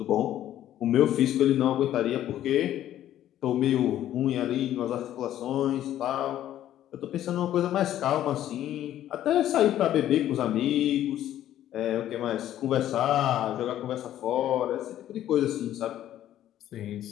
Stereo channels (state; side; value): quieter; right; 12.2 dB